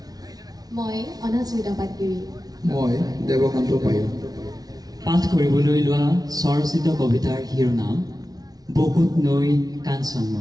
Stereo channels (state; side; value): late; left; 0.19 ms